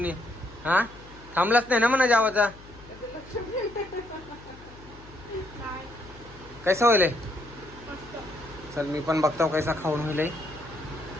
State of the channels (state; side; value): noise; left; hum, 20 dB below the sound